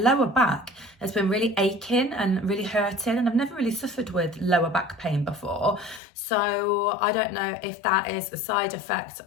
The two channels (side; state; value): right; drops out; at 6.0 s